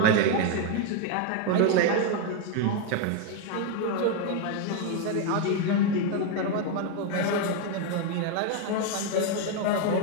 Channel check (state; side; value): different; both; correlation 0.01